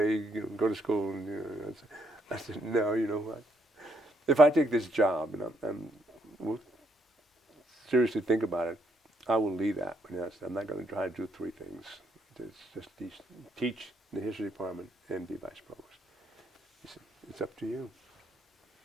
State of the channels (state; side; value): normal; both; correlation 0.73